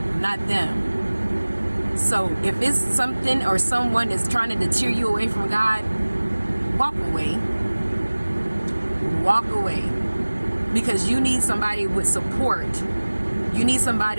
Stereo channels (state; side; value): inverted; both; correlation -1.00